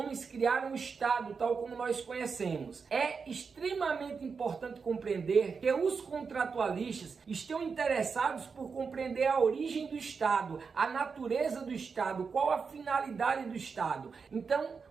criaram o estado tal como nós conhecemos. É extremamente importante compreender que os contratualistas estão interessados por compreender a origem do estado, a natureza do estado, qual a finalidade do estado. Então,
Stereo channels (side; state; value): left; quieter; 5.4 dB